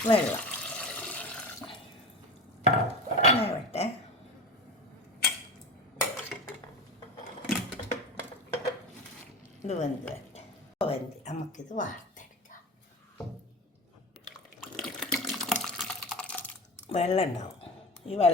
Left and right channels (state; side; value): normal; both; correlation 0.30